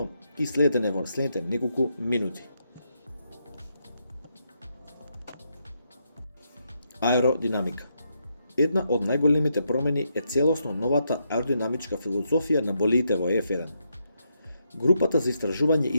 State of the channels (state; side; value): inverted; both; correlation -0.80